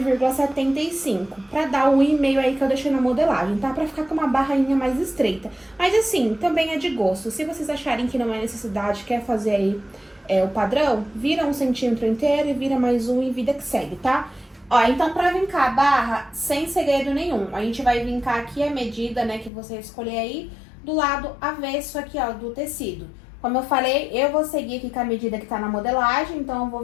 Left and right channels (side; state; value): right; drops out; at 19.5 s